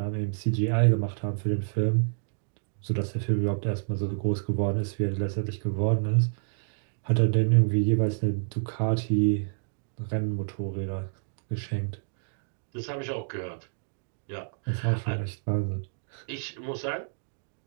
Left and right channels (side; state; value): left; silent; digital silence